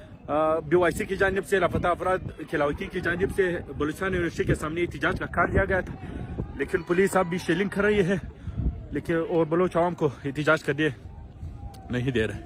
BYC की जानिब से लापता अफराद खिलावती की जानिब से बलूचिस्तान यूनिवर्सिटी के सामने एहतजाज का कार्य लिया गया था, लेकिन पुलिस अब भी शेलिंग कर रही है लेकिन और बलोच अवाम को एहतजाज करने नहीं दे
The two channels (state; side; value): identical; both; correlation 1.00